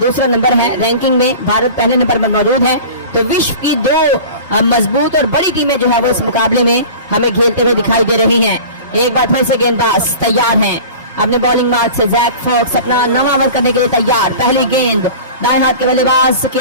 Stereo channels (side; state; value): both; inverted; correlation -0.38